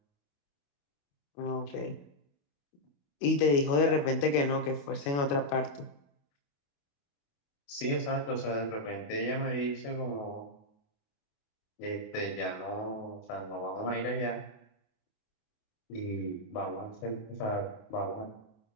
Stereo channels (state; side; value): late; right; 28 ms